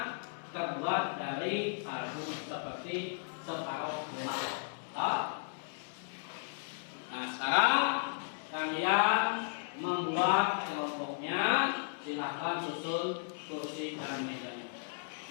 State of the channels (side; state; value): right; silent; 54 dB below the other